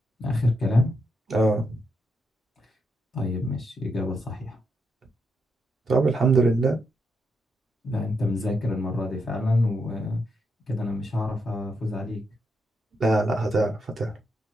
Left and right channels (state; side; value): normal; both; correlation 0.81